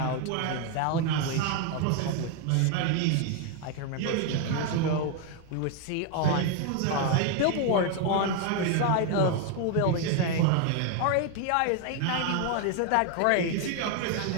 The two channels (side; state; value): both; different; correlation 0.01